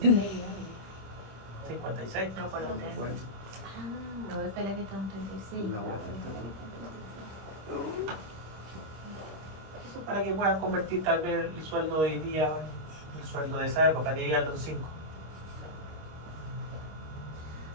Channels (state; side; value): late; left; 26 ms